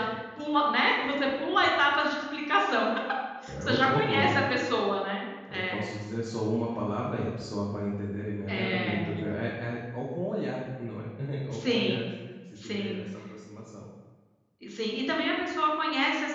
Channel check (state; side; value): identical; both; correlation 1.00